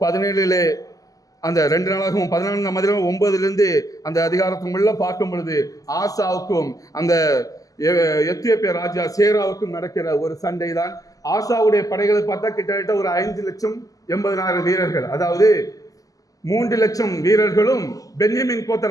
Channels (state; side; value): late; right; 0.17 ms